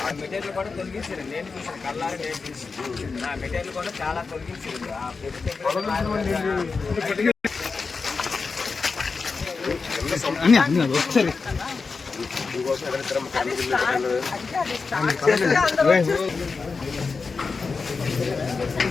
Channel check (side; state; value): right; quieter; 4.6 dB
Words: మెటీరియల్ కూడా తొలగించారు. నేను చూసాను కళ్ళారా, నేను చూసాను. నా మెటీరియల్ కూడా చాలా తొలగించారు.